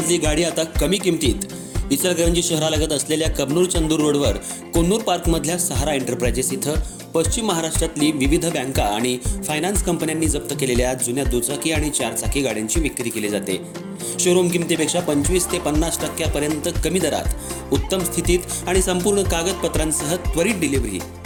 गाडी आता कमी किमतीत. इचलकरंजी शहरालगत असलेल्या कबनूर चंदूर रोडवर कोन्नूर पार्कमधल्या सहारा एंटरप्राइजेस इथं पश्चिम महाराष्ट्रातली विविध बँका आणि फायनान्स कंपन्यांनी जप्त केलेल्या जुन्या दुचाकी आणि चारचाकी गाड्यांची विक्री केली जाते. शोरूम किमतीपेक्षा 25 ते 50% कमी दरात, उत्तम स्थितीत आणि संपूर्ण कागदपत्रांसह त्वरित डिलिव्हरी.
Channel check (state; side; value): identical; both; correlation 1.00